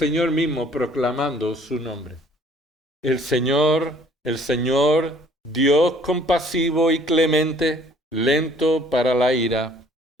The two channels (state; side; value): normal; both; correlation 0.58